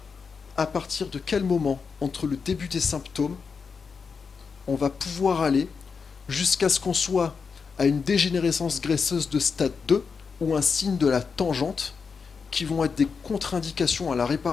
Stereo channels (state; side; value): quieter; right; 5.5 dB